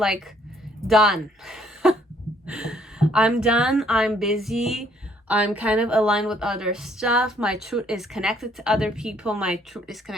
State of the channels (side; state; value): both; normal; correlation 0.65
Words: done. I'm done. I'm busy. I'm kind of aligned with other stuff. My truth is connected to other people. My truth is